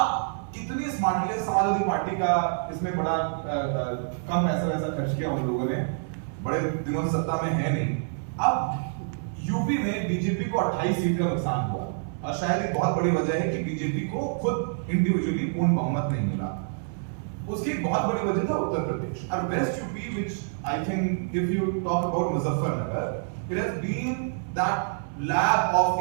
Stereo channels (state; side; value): silent; left; digital silence